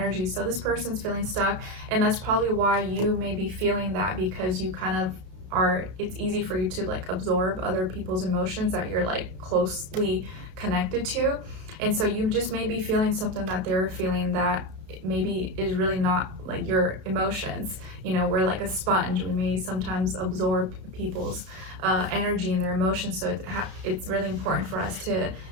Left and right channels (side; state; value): left; late; 32 ms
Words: So this person's feeling stuck, and that's probably why you may be feeling that, because you kind of it's easy for you to like absorb other people's emotions that you're like closely connected to. And so you just may be feeling something that they're feeling that maybe is really not like your emotions. You know, we're like a sponge. We may sometimes absorb people's energy and their emotions. So it's really important for us to